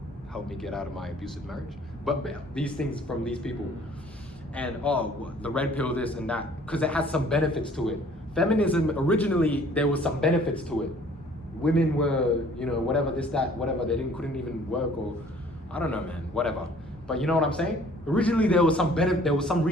helped me get out of my abusive marriage. But these things from these people, and the red pill, this and that, because it has some benefits to it. Feminism, originally, there was some benefits to it. Women were, whatever, this, that, whatever, they couldn't even work, or I don't know, man, whatever. But you know what I'm saying? Originally there was some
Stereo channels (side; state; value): both; normal; correlation 0.55